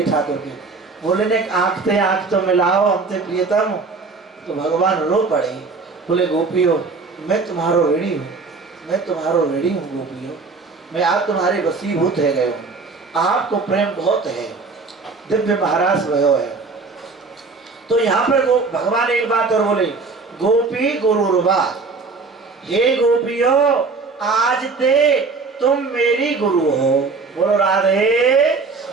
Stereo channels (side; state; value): left; quieter; 4.2 dB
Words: ठाकुर के, बोले ने आंख तो मिलाओ हमसे प्रियतम। तो भगवान रो पड़े, बोले गोपियों मैं तुम्हारो ऋणी हूँ, मैं तुम्हारो ऋणी हूँ गोपियों, मैं आज तुम्हारे वसीभूत है गए हूँ, आपको प्रेम बहुत है, दिव्य महाराज भयो है। तो यहाँ पर भगवान एक बात और बोले, गोपी गुरुर्वा, हे गोपियों आज ते तुम मेरी गुरु हो। बोलो राधे।